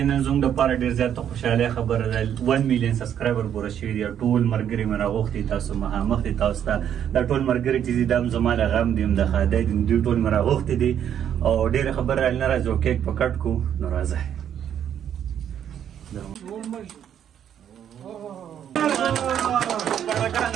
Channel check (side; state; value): left; quieter; 9.5 dB